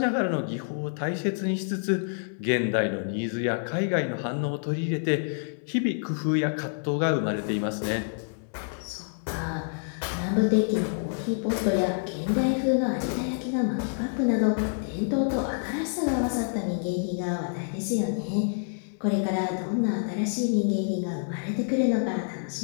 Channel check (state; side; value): silent; right; 60 dB below the other